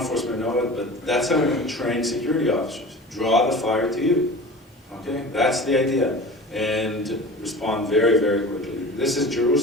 know it, but that's how we train security officers. Draw the fire to you. Okay, that's the idea. And respond very, very quickly. This is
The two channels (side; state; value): both; normal; correlation 0.37